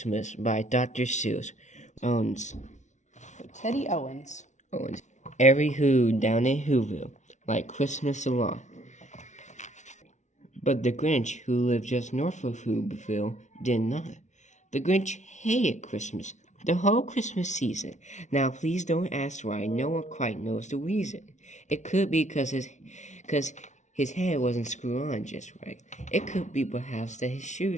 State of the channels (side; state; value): right; late; 0.35 ms